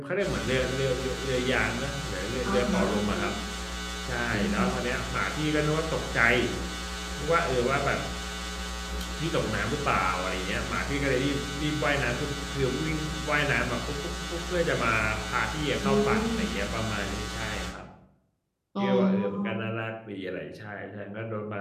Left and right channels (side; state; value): both; identical; correlation 1.00